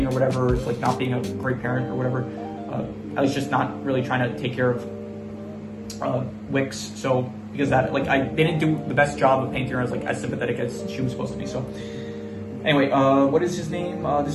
or whatever, it's like not being a great parent or whatever, at least just not really trying to take care of Wicks. So because that like they didn't do the best job of painting her as like as sympathetic as she was supposed to be. So anyway, what is his name?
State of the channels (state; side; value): identical; both; correlation 1.00